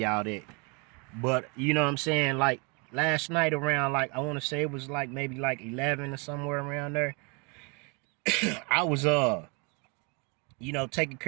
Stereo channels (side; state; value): left; quieter; 32.3 dB